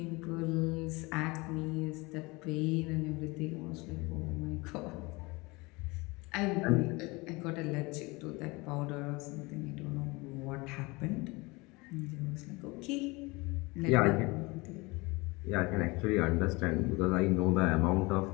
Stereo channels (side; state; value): right; quieter; 24.7 dB